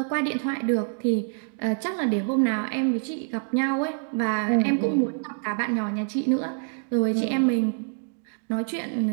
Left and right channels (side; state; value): left; silent; 58 dB below the other